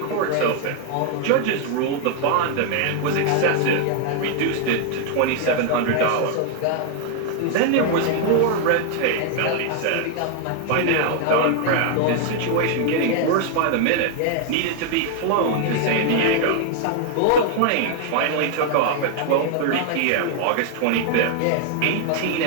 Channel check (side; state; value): both; different; correlation 0.00